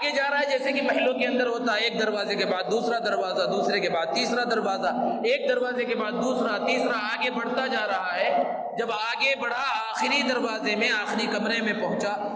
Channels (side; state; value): both; identical; correlation 1.00